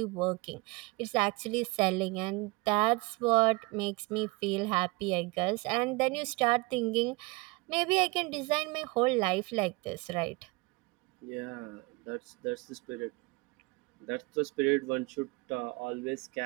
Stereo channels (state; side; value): quieter; left; 25.7 dB